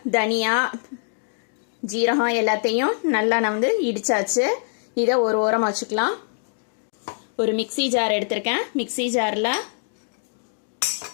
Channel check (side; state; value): right; silent; digital silence